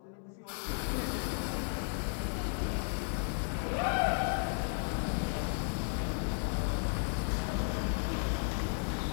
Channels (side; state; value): right; silent; 55 dB below the other